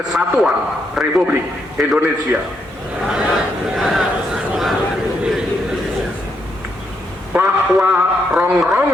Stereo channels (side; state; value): both; normal; correlation 0.78